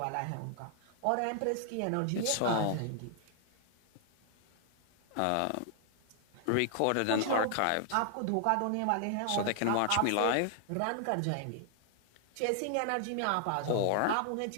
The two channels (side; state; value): both; different; correlation 0.00